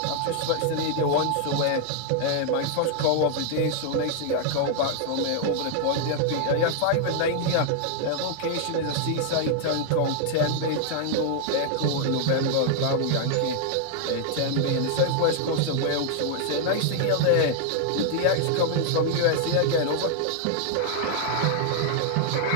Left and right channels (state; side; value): different; both; correlation 0.00